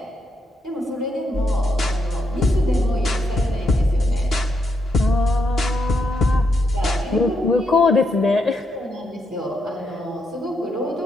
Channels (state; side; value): normal; both; correlation 0.80